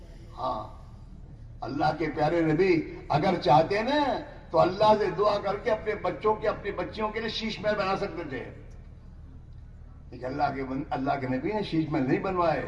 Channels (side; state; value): both; identical; correlation 1.00